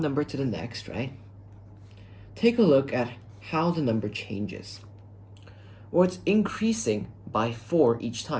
number to the next, right? Take a look at how the number changes. Well, it's increasing by 4 each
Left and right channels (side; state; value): both; identical; correlation 1.00